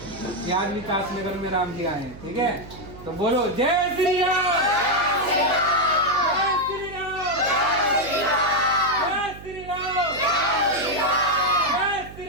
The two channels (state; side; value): noise; right; hum, 16 dB below the sound